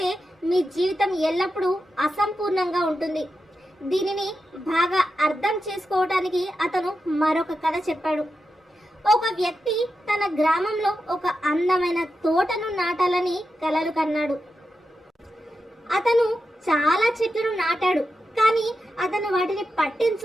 మీ జీవితం ఎల్లప్పుడూ అసంపూర్ణంగా ఉంటుంది. దీనిని బాగా అర్థం చేసుకోవడానికి అతను మరొక కథ చెప్పాడు. ఒక వ్యక్తి తన గ్రామంలో ఒక అందమైన తోటను నాటాలని కలలు కన్నాడు. అతను చాలా చెట్లను నాటాడు, కానీ అతను వాటిని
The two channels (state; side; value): normal; both; correlation 0.89